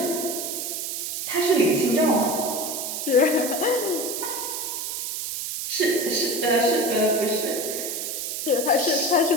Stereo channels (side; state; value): right; noise; hiss, 4 dB below the sound